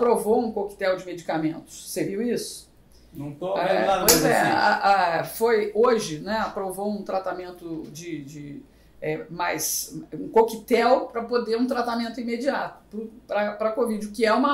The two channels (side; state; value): both; identical; correlation 1.00